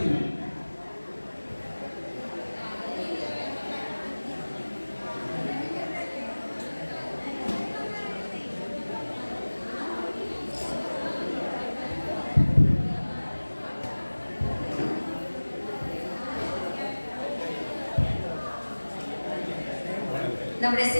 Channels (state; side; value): inverted; both; correlation -1.00